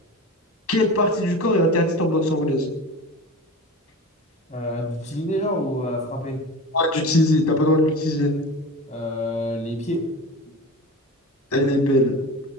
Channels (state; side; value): normal; both; correlation 0.32